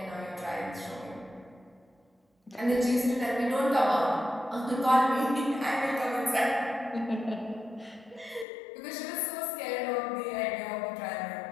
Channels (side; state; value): right; drops out; at 8.5 s